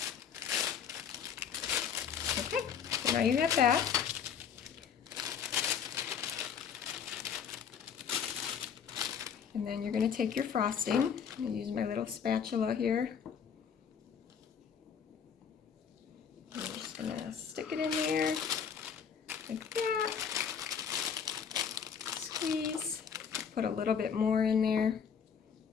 Okay, so now you have that. And then you're going to take your frosting. I'm going to use my little spatula here. I'm just going to stick it in there like that. Squeeze. Put a little bit more in there.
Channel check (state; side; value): quieter; right; 7.3 dB